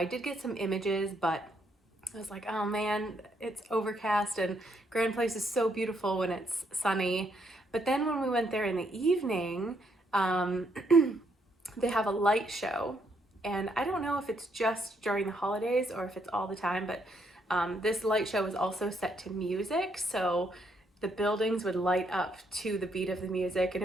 did get some images, but I was like, oh man, it's overcast, and Grand Place is so beautiful when it's sunny. But then when we went there in the evening, they have a light show, and I don't know if it's just during the holidays or if it's all the time, but this light show was also set to music, so the buildings would light up to the beat of the music, and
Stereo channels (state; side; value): normal; both; correlation 0.73